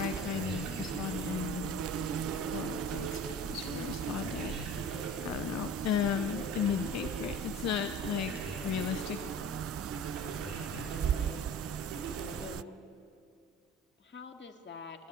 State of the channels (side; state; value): both; normal; correlation 0.40